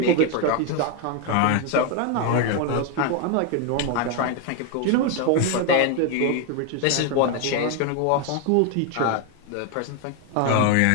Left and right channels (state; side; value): different; both; correlation 0.01